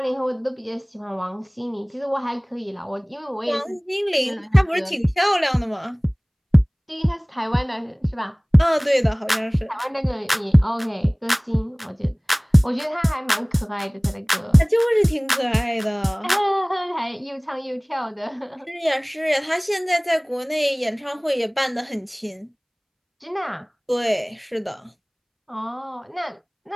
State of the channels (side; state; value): both; identical; correlation 1.00